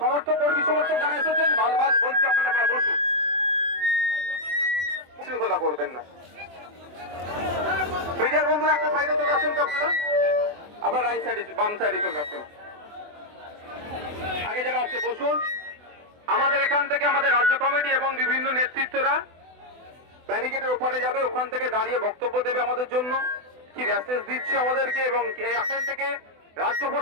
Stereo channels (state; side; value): late; left; 24 ms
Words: কর্মী সমর্থক যারা এসেছেন বারবার বলছি আপনারা বসুন, শৃঙ্খলা করবেন না। মিডিয়ার বন্ধুরা একটা সাইডে চলে আসেন তো আপনারা, আবার রাইট সাইডে বাম সাইডে চলে আসেন। আগে যারা আছে বসুন। আমাদের এখান থেকে আমাদের রাজ্য কমিটি এবং বিভিন্ন নেতৃত্বরা ব্যারিকেডের ওপারে যাবে, ওখান থেকে দাঁড়িয়ে বক্তব্য দেবে আমাদের জন্য, কি মেসেজ দিচ্ছে আমাদেরকে, এবং এখান থেকে রাজ্য